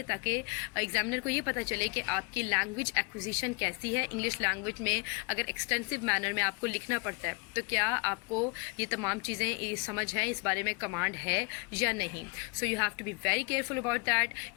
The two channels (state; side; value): quieter; right; 31.9 dB